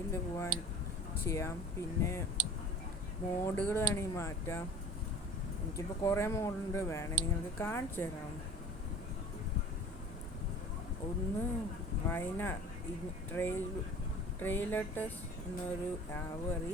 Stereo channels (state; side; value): normal; both; correlation 0.41